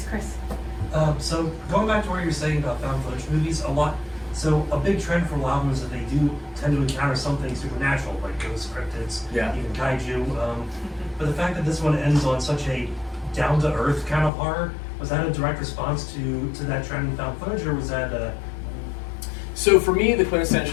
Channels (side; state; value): right; drops out; at 14.3 s